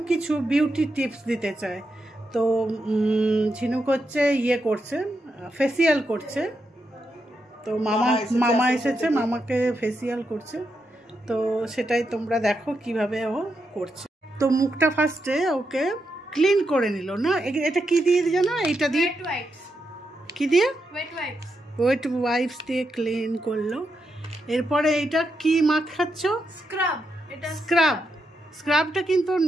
কিছু বিউটি টিপস দিতে চায়। তো ঝিনুক হচ্ছে করছে, ফেসিয়াল করছে। তো মামা এসেছে, মামাকে ফেসিয়াল করছে। তো সেটাই তোমরা দেখো কিভাবে ও করছে। তো মুখটা ফার্স্টে ওকে ক্লিন করে নিল না, এটা কি দিয়ে জানো? এইটা দিয়ে কি দিয়ে ওয়েট ওয়াইপস দিয়ে ক্লিন করলো। এরপরে এটা কি মাখাচ্ছ? স্ক্রাবটা কিন্তু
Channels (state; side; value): normal; both; correlation 0.84